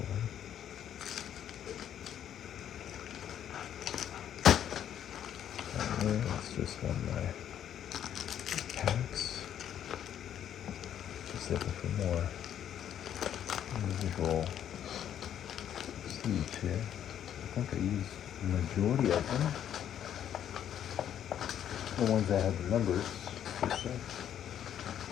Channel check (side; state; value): right; quieter; 10.0 dB